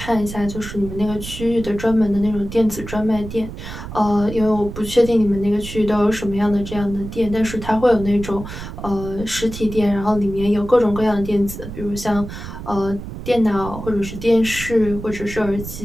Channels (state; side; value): noise; right; rumble, 10 dB below the sound